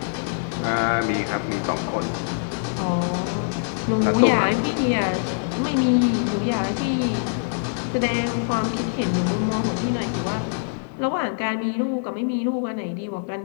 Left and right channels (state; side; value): silent; right; digital silence